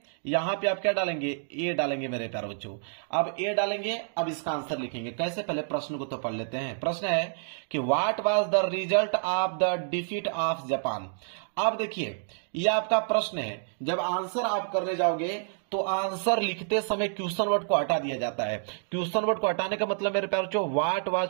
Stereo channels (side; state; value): left; silent; digital silence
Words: यहां पे आप क्या डालेंगे? ए डालेंगे मेरे प्यारे बच्चों। अब ए डालेंगे, अब इसका आंसर लिखेंगे कैसे, पहले प्रश्न को तो पढ़ लेते हैं। प्रश्न है कि what was the result of the defeat of Japan. अब देखिए ये आपका प्रश्न है, जब आंसर आप करने जाओगे तो आंसर लिखते समय क्वेश्चन वर्ड को हटा दिया जाता है। क्वेश्चन वर्ड को हटाने का मतलब मेरे प्यारे बच्चों, व्हाट